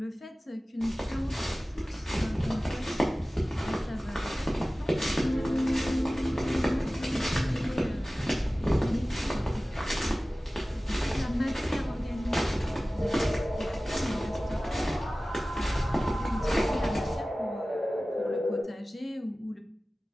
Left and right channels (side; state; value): both; normal; correlation 0.97